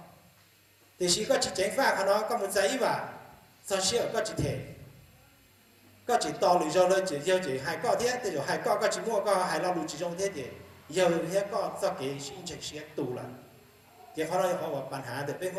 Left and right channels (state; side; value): identical; both; correlation 1.00